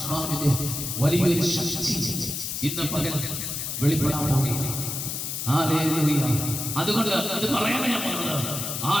വലിയൊരു ശക്തി ഇന്ന് പകൽ വെളിപ്പെടാൻ പോവുകയാണ്. ഹല്ലേലൂയ. അതുകൊണ്ട് ഇത് പറയാനാണ് ഞാൻ പറഞ്ഞത്.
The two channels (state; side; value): noise; left; hiss, 4 dB below the sound